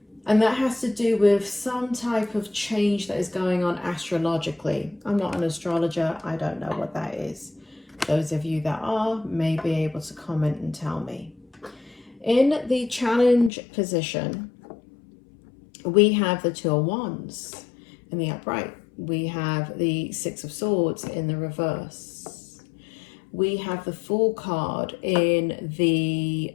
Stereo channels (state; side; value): drops out; right; at 13.5 s